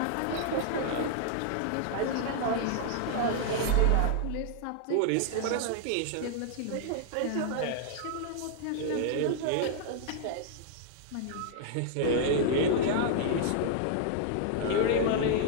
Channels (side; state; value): both; different; correlation -0.01